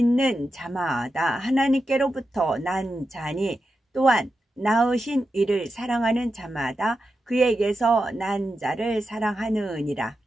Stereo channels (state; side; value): normal; both; correlation 0.89